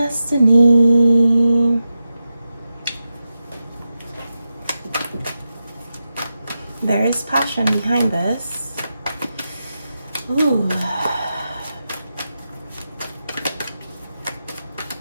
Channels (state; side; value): inverted; both; correlation -0.91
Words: There is passion behind this. Ooh.